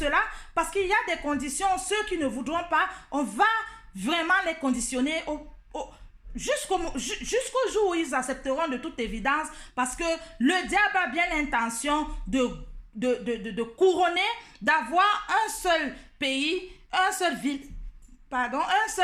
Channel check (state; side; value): identical; both; correlation 1.00